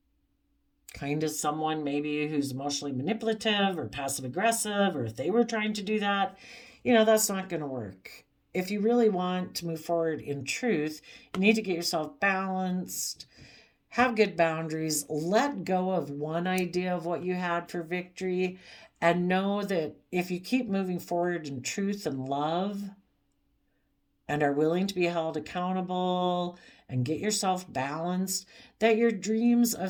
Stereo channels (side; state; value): both; identical; correlation 1.00